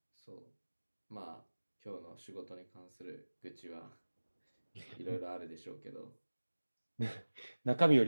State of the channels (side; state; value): both; inverted; correlation -1.00